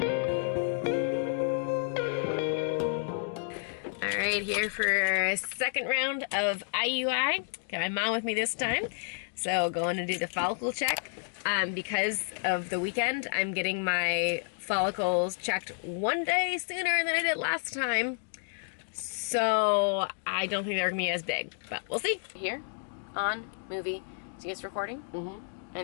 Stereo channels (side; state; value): right; silent; digital silence